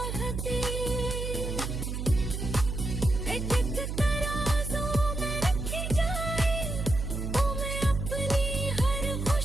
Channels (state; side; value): noise; right; hum, 3 dB below the sound